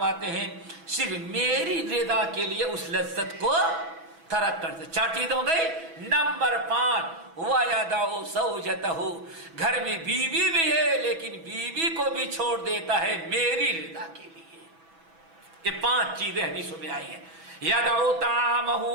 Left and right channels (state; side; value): late; left; 6.1 ms